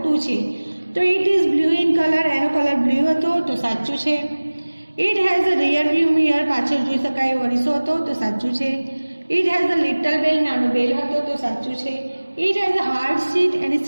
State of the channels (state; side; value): inverted; both; correlation -1.00